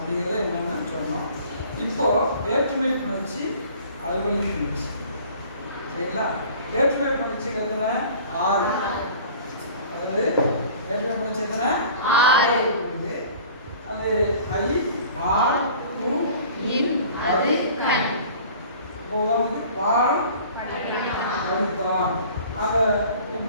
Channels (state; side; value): inverted; both; correlation -0.47